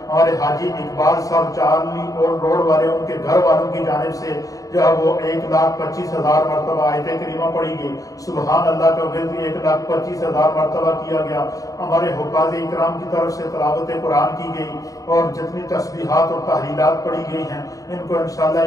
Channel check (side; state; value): right; late; 0.17 ms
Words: ہمارے حاجی اقبال صاحب چارلی اور روڈ والے ان کے گھر والوں کی جانب سے جو ہے وہ 1,25,000 مرتبہ آیت کریمہ پڑھی گئی۔ سبحان اللہ کا ورد 1,25,000 مرتبہ کیا گیا۔ ہمارے حفاظ اکرام کی طرف سے تلاوت قرآن کی گئی، اور جتنی تسبیحات اور تحلیلات پڑھی گئی ہیں ان کو انشاءاللہ